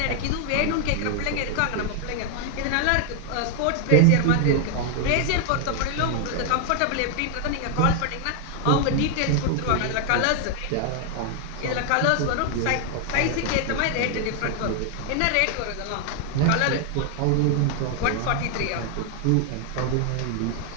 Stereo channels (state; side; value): different; both; correlation 0.00